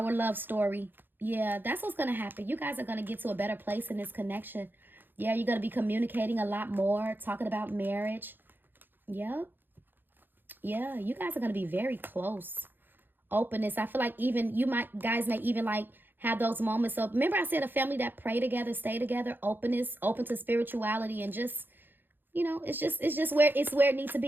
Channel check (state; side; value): late; left; 0.095 ms